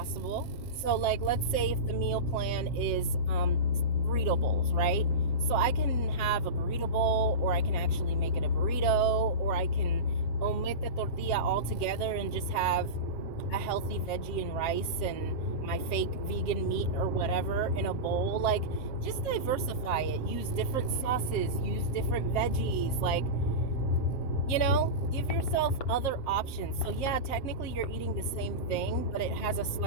So like, let's say if the meal plan is burrito bowls, right? So I can have a burrito bowl, or I can actually make it a burrito, or I can omit the tortilla altogether and just have a healthy veggie and rice and my fake vegan meat or whatever in a bowl. Like, just diversify it. Use different sauces, use different veggies. Like, give yourself other options. So yeah, technically you're eating the same thing, but it has a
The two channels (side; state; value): right; late; 7.5 ms